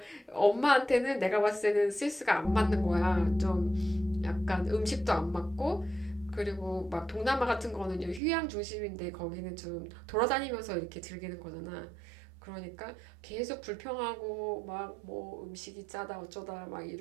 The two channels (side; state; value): left; drops out; at 8.2 s